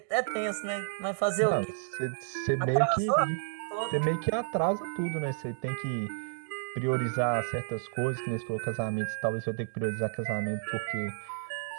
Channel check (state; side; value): silent; left; digital silence